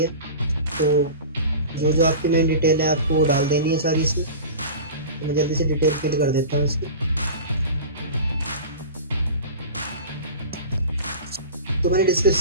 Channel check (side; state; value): both; inverted; correlation -0.33